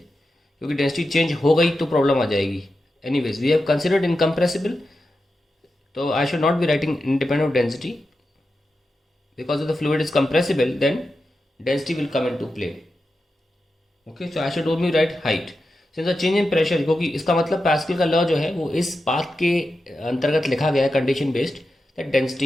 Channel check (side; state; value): both; normal; correlation 0.90